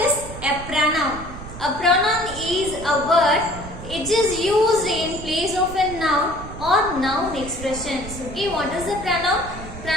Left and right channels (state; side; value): noise; right; rumble, 12 dB below the sound